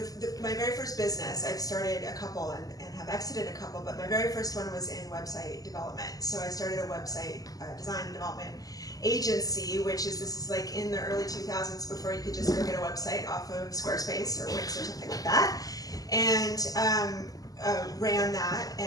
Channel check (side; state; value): right; late; 0.17 ms